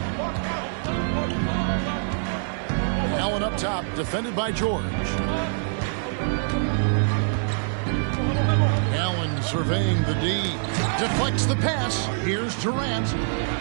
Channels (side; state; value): left; silent; 57 dB below the other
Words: Allen up top, defended by George. Allen surveying the D. Deflects the pass. Here's Durant.